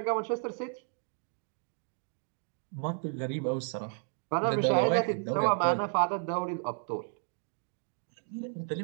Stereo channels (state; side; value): silent; left; 56 dB below the other